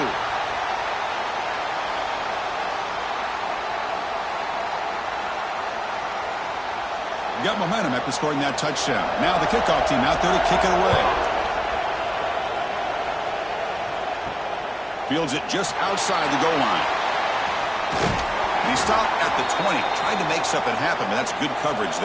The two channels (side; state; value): both; identical; correlation 1.00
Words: Got momentum after scoring that touchdown. Now the kickoff team out there to kick it away. Fields it just outside the goal line. He stopped at the 20. Tried to make something happen, but that's good coverage